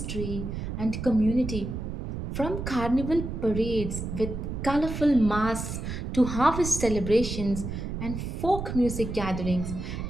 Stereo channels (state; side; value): noise; right; rumble, 5 dB below the sound